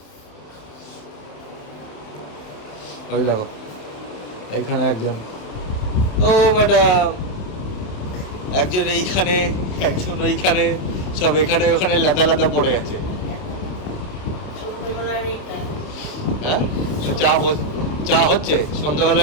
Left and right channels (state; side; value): late; right; 28 ms